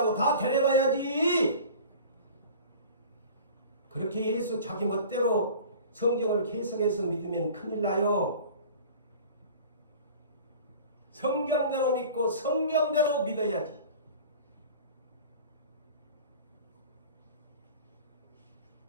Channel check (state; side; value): inverted; both; correlation -0.41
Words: 다 데려가야지. 그렇게 예수 자기 멋대로 성경을 해석해서 믿으면 큰일 나요. 성경대로 믿고 성경대로 믿어야지.